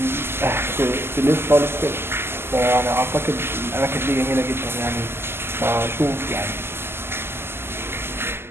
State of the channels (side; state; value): left; late; 0.12 ms